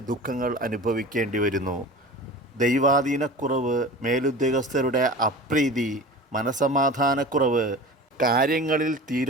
ദുഃഖങ്ങൾ അനുഭവിക്കേണ്ടി വരുന്നു. ദൈവാധീനക്കുറവ്, മേലുദ്യോഗസ്ഥരുടെ അപ്രീതി, മനസമാധാനക്കുറവ്, കാര്യങ്ങളിൽ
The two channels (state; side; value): normal; both; correlation 0.35